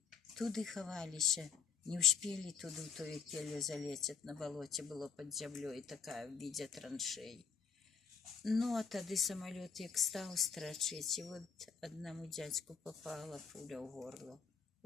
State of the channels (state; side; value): quieter; right; 6.4 dB